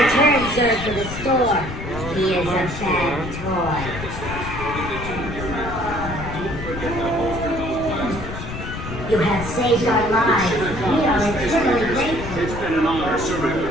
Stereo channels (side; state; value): left; noise; rumble, 8 dB below the sound